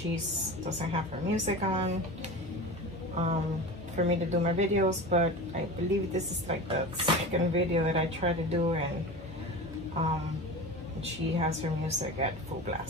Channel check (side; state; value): both; normal; correlation 0.31